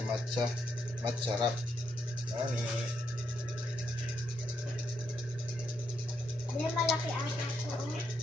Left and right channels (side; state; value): both; normal; correlation 0.79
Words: wrap. Ani. Hindi malaki ata ko.